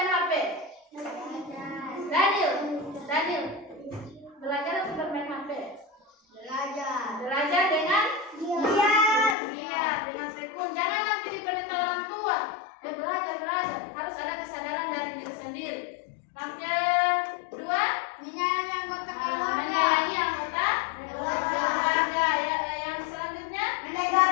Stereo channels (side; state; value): right; drops out; at 9.3 s